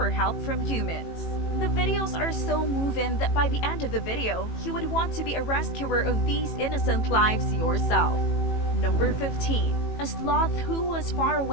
help from humans. The videos are so moving that by the end of the video, you would want to be a rescuer of these innocent lives yourself. Number 15. A sloth who was far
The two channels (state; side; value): late; right; 18 ms